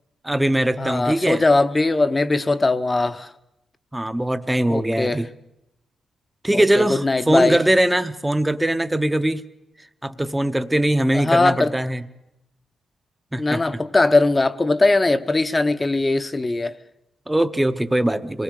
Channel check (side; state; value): both; normal; correlation 0.97